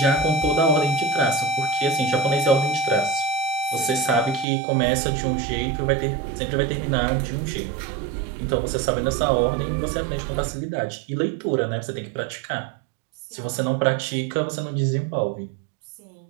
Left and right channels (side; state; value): left; drops out; at 4.5 s